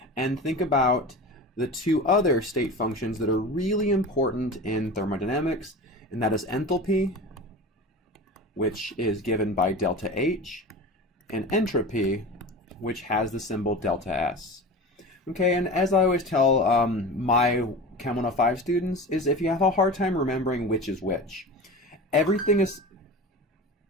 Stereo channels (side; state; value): both; normal; correlation 0.32